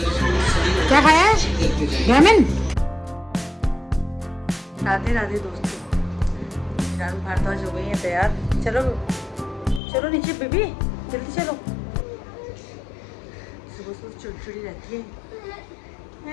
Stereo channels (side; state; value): right; drops out; at 9.8 s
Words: खाया है? रामेन। राधे राधे दोस्तों, फिलहाल भारद्वाज हो गई है तैयार। चलो चलो नीचे बेबी, जल्दी चलो। सुबह सुबह चिड़चिड़ी रहती